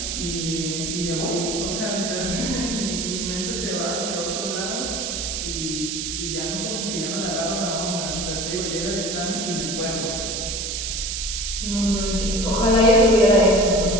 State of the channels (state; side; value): noise; right; hiss, 3 dB below the sound